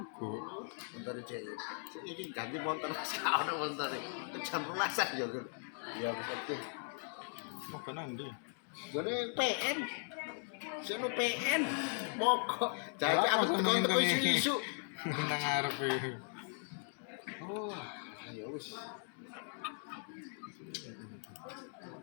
Motor cek. Ini ganti motor sekarang motor. Jam 12 ya kan. Ya oke. Mau ke nanti. Jone PN. Seno PN. Mogok. Jadi Apa aku sama teko ini? isu. Nang ngarep. Oh, ya wis.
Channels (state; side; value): silent; right; 52 dB below the other